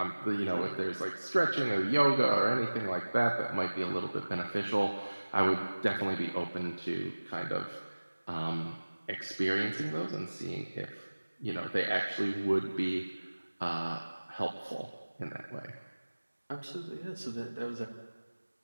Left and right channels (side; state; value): both; inverted; correlation -1.00